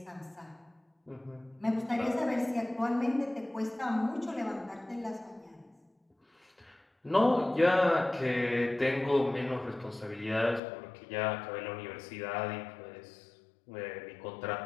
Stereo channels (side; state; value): right; drops out; at 10.6 s